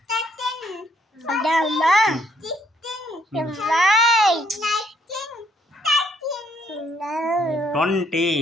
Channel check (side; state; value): both; normal; correlation 0.69